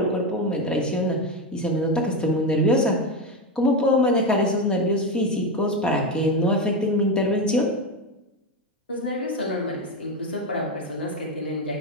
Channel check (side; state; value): both; normal; correlation 0.13